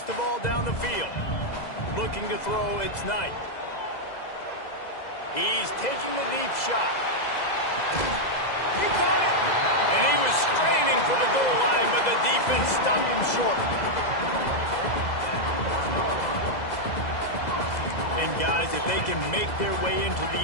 the ball down the field. Looking to throw, it's Knight. He's taking a deep shot. He caught it! And he was straining for the goal line, but the defense stopped him short. And guys, if they can make their way into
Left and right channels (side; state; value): right; late; 2.0 ms